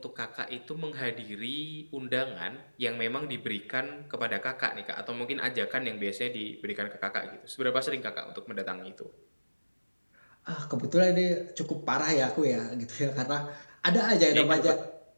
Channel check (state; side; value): inverted; both; correlation -1.00